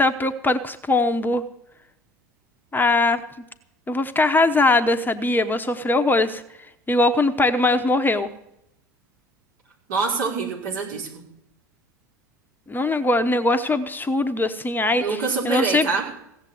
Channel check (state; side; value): normal; both; correlation 0.58